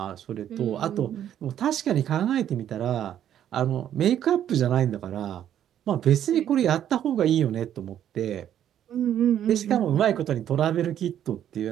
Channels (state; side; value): quieter; left; 10.5 dB